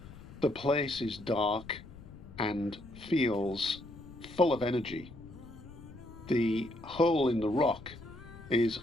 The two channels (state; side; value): noise; left; rumble, 17 dB below the sound